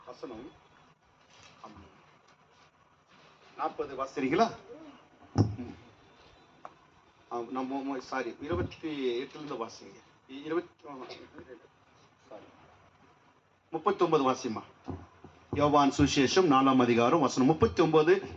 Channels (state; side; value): identical; both; correlation 1.00